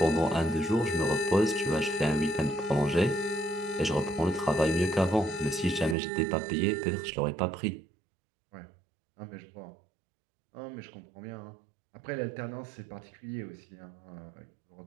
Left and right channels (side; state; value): left; drops out; at 6.0 s